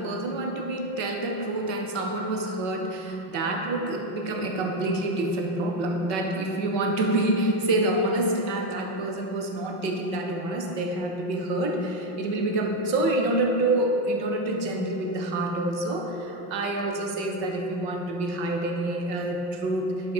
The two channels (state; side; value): late; right; 5.3 ms